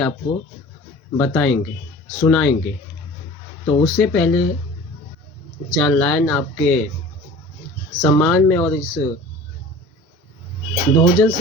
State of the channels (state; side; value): normal; both; correlation 0.42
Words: आपको बताएंगे, सुनाएंगे। तो उससे पहले 4 लाइन आपके सम्मान में और इस बहुजन